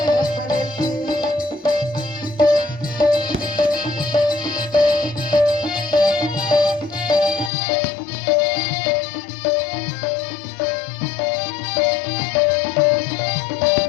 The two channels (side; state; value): right; drops out; at 7.5 s